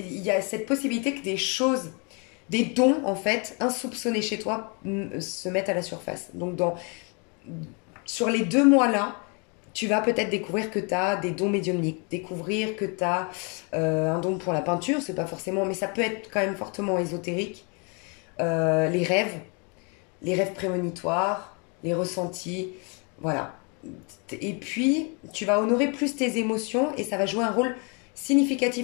y a cette possibilité que des choses, des dons en fait, insoupçonnés chez toi se mettent à la surface. Donc sur les 2 mois là, tu vas peut-être découvrir que tu as des dons médiumniques, découvrir que tu as un don pour la peinture, c'est pas forcément, mais ça peut être quand même fortement ésotérique. Les rêves prémonitoires, les ressentis, voilà. Et puis, tu vas honorer plus tes émotions et ça va jouer un rôle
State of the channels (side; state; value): right; quieter; 34.3 dB